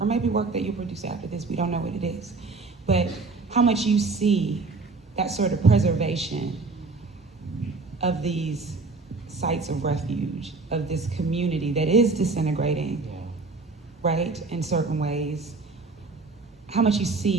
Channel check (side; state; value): left; quieter; 3.9 dB